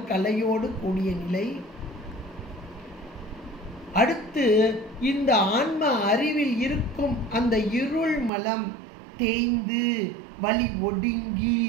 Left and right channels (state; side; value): drops out; left; at 8.3 s